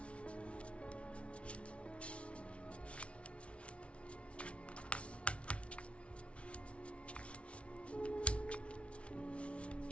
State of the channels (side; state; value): right; late; 0.061 ms